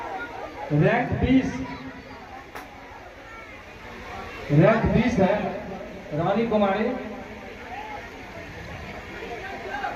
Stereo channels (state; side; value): identical; both; correlation 1.00